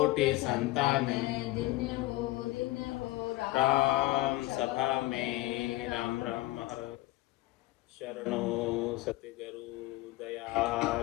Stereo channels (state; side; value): quieter; right; 18.3 dB